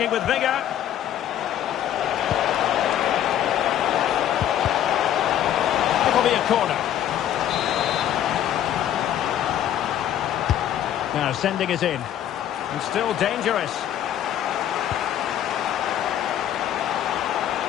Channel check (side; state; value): right; quieter; 11.0 dB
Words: with vigour. It'll be a corner. Now sending it in. And still dangerous.